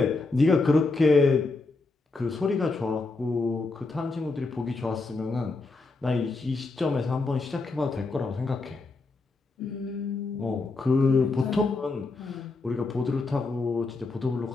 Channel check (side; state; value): right; quieter; 3.6 dB